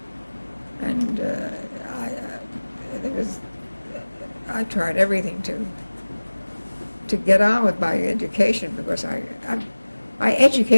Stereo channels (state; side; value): inverted; both; correlation -1.00